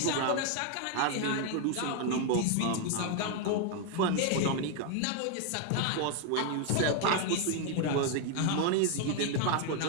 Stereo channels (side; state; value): both; different; correlation 0.00